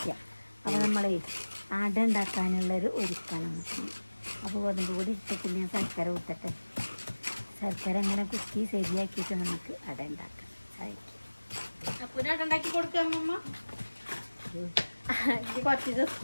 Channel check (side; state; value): both; inverted; correlation -1.00